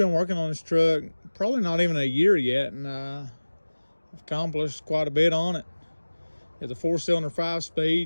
been working on this truck probably not even a year yet, and I've accomplished quite a bit on it. It's a 4-cylinder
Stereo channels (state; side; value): inverted; both; correlation -1.00